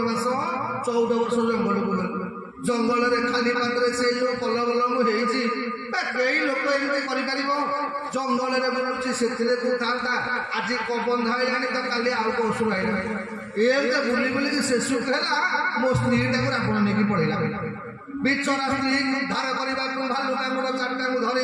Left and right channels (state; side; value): identical; both; correlation 1.00